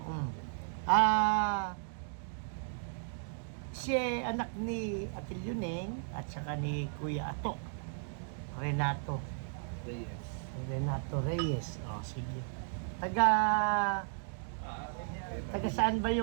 Si anak ni Atil Yuneng at saka ni Kuya Ato. Renato Reyes. Sige. Taga saan ba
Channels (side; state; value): left; silent; digital silence